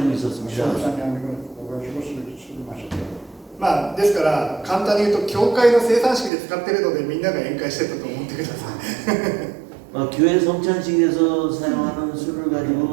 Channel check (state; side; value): drops out; left; at 6.3 s